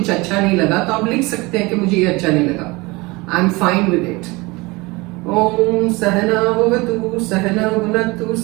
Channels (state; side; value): quieter; left; 23.8 dB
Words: अच्छा नहीं लगा तो आप लिख सकते हैं कि मुझे ये अच्छा नहीं लगा. I'm fine with it. ओम सहना भवतु सहना भुनक्तु